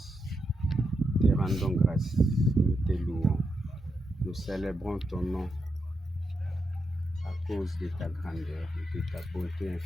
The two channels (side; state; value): both; normal; correlation 0.84